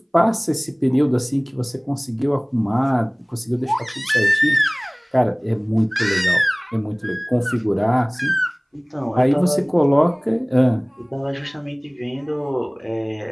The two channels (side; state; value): both; identical; correlation 1.00